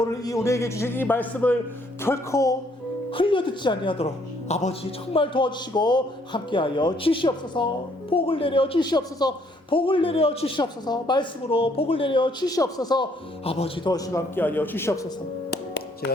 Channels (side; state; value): both; normal; correlation 0.66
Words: 우리에게 주신 이 말씀을 결코 흘려듣지 아니하도록 아버지 정말 도와주시고 함께하여 주시옵소서. 복을 내려 주시옵소서. 복을 내려 주시옵소서. 말씀으로 복을 내려 주시옵소서. 아버지 도와주시고 함께하여 주시옵소서.